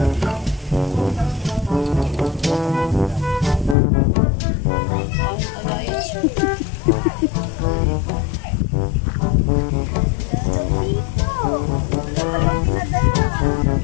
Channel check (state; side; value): drops out; right; at 3.8 s